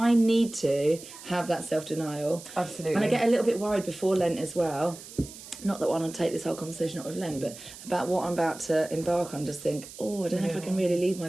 need to have that self-denial. Absolutely. And I get a little bit worried before Lent as well. Not that I want to take this whole conversation up with Lent, but about what I'm about to embark on, just think, I don't know if I can really leave my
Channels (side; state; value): right; noise; hiss, 15 dB below the sound